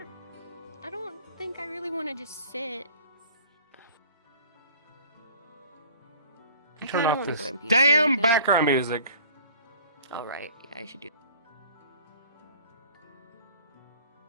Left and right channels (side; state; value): both; inverted; correlation -0.50